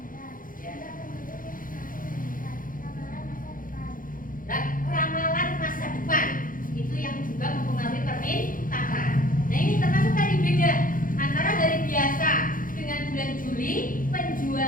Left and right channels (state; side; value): late; right; 0.40 ms